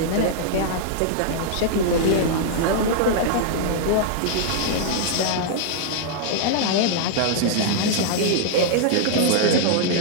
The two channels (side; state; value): both; different; correlation -0.01